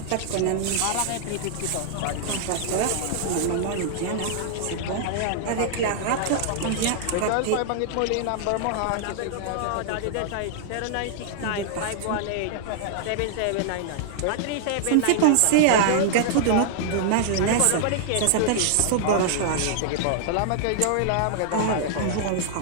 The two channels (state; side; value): different; both; correlation -0.01